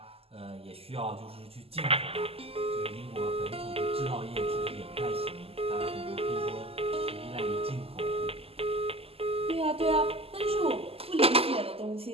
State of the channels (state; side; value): late; left; 0.28 ms